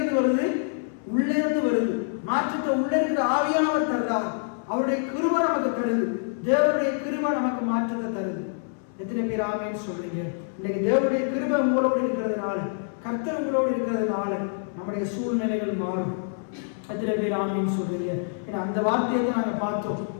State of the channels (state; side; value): silent; right; 61 dB below the other